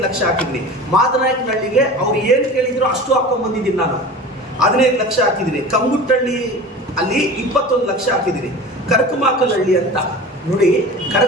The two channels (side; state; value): both; normal; correlation 0.36